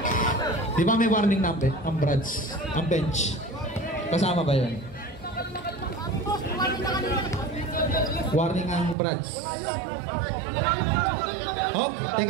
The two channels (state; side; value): drops out; left; at 9.0 s